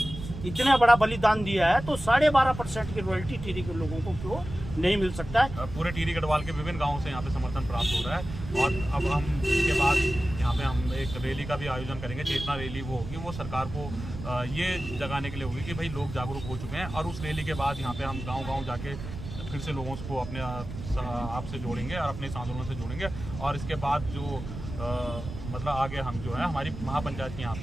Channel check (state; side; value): noise; right; rumble, 9 dB below the sound